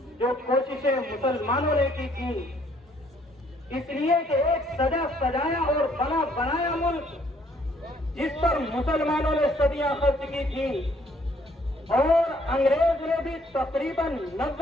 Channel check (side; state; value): both; normal; correlation 0.65